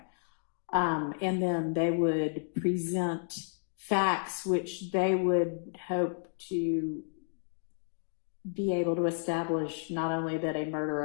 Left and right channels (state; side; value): silent; right; digital silence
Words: And then they would present facts which they would hope to be able to establish not only that a murder